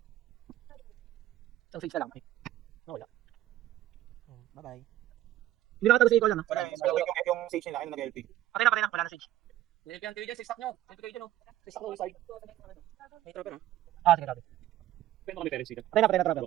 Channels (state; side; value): quieter; left; 14.0 dB